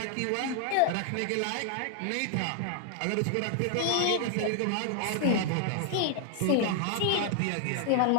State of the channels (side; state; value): both; different; correlation 0.00